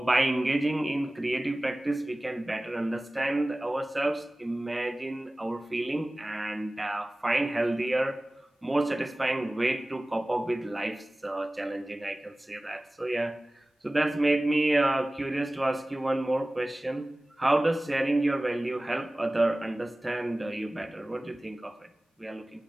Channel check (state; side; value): normal; both; correlation 0.98